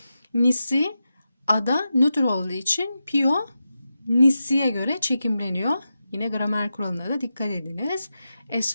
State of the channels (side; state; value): both; inverted; correlation -0.90